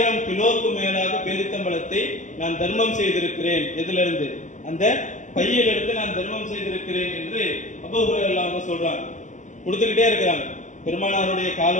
கிலோக்கு மேலாக பேரித்தம்பழத்தை நான் தர்மம் செய்திருக்கிறேன். எதுல இருந்து? அந்த பையிலிருந்து நான் தர்மம் செய்திருக்கிறேன் என்று அபூ ஹுரைரா சொல்றாங்க. கொடுத்துக்கிட்டே இருக்கிறாங்க. பெருமானாருடைய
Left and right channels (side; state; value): right; late; 0.36 ms